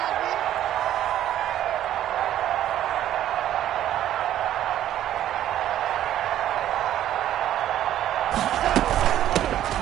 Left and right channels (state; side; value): quieter; left; 12.0 dB